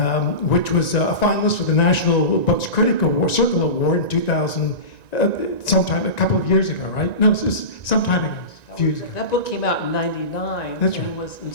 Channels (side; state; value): right; late; 1.9 ms